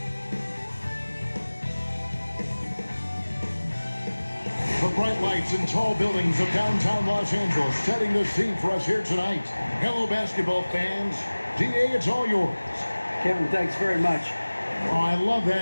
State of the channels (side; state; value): both; inverted; correlation -1.00